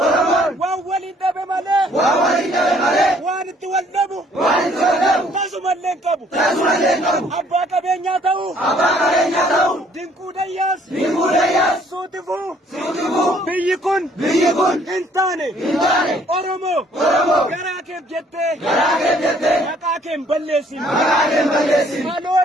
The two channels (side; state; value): both; normal; correlation 0.61